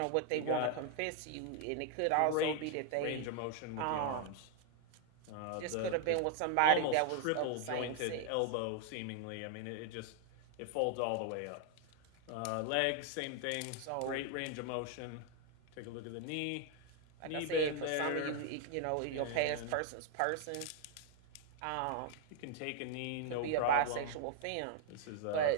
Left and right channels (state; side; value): different; both; correlation 0.00